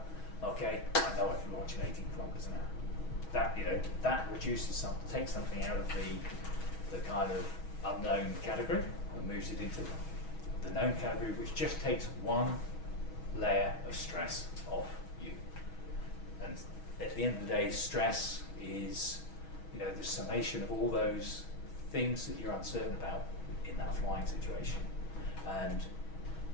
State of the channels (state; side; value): late; right; 6.2 ms